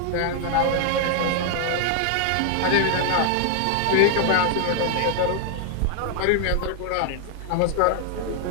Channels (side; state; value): both; different; correlation 0.00